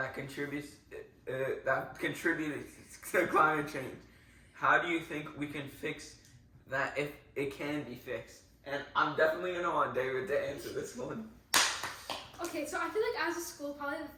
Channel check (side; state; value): both; identical; correlation 1.00